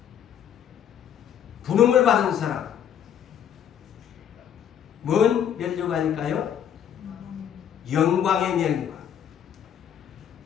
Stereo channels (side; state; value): right; quieter; 9.1 dB